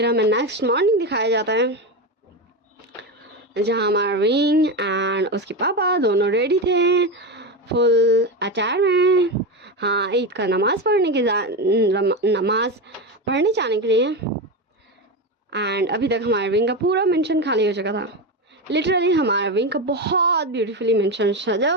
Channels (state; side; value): normal; both; correlation 0.16